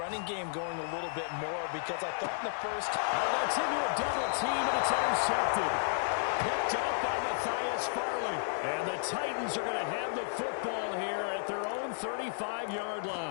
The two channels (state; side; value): silent; right; digital silence